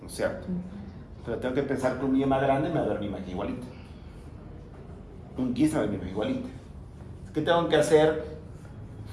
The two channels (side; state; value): both; identical; correlation 1.00